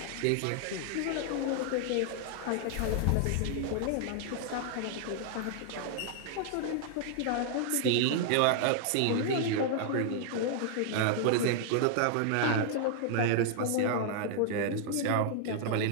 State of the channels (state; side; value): different; both; correlation -0.01